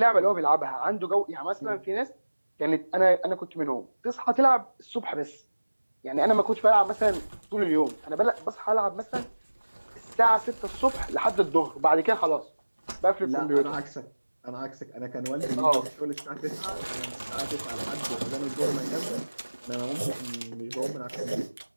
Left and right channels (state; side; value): inverted; both; correlation -1.00